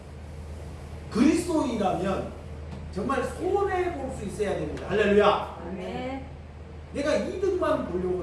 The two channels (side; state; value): both; identical; correlation 1.00